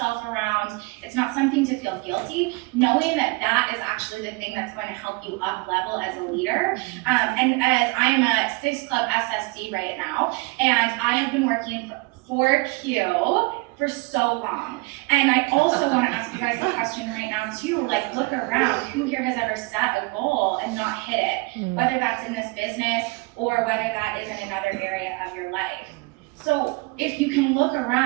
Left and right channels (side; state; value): left; quieter; 26.5 dB